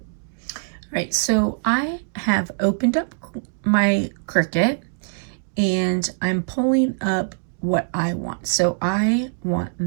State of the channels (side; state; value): left; silent; digital silence